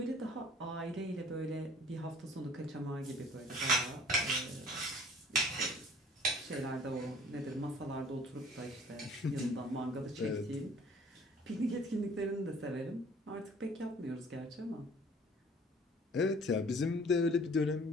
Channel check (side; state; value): both; normal; correlation 0.52